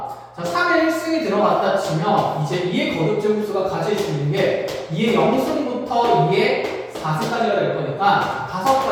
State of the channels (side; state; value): both; identical; correlation 1.00